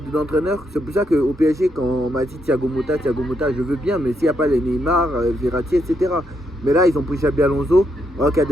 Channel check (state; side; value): normal; both; correlation 0.78